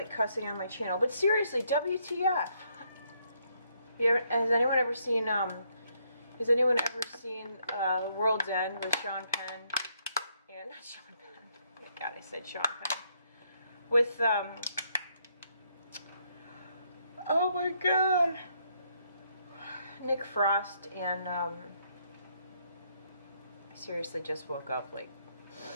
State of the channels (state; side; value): inverted; both; correlation -0.72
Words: cussing on my channel, but seriously, WTF? Has anyone ever seen, World's End with Sean Penn? And, not Sean Penn. Oh my God, I said Sean Penn. With, oh my God. Nick Frost and, I seriously just woke up, like,